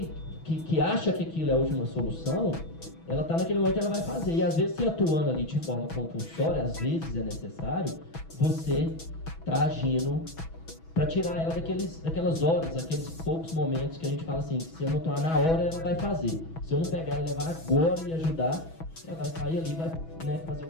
acha que aquilo é a última solução, ela está naquele momento, ela vai fazer. E às vezes, você atuando ali de forma compulsória, às vezes é necessário, você está agindo para tirar ela daquelas horas, aqueles poucos momentos que a gente fala assim, que se eu não atuar na hora, ela vai fazer. Se eu não pegar e levar agora e ajudar, ela vai sair ali e vai fazer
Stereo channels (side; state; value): right; late; 6.1 ms